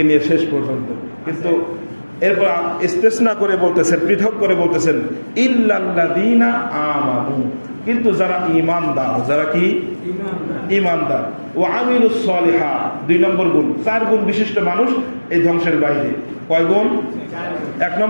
নিয়ে শেষ পর্যন্ত। কিন্তু এরপর ইস্তেসনা করে বলতেছেন, পৃথক করে বলতেছেন ইল্লাল্লাযীনা আমানু, কিন্তু যারা ঈমানদার, যারা কি ঈমানদার, ওয়া আমিলুস সলিহাত, 2 নম্বর গুণ। 4 গুণ বিশিষ্ট মানুষ এই ধ্বংসের বাইরে। কয় গুণ? 1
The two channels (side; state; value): both; inverted; correlation -1.00